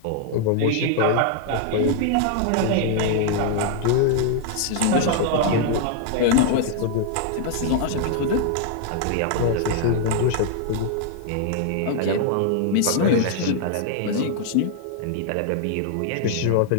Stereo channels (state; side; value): different; both; correlation 0.00